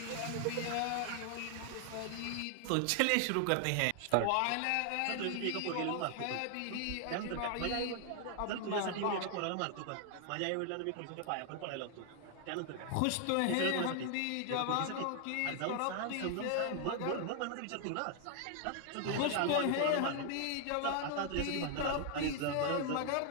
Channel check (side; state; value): both; different; correlation 0.00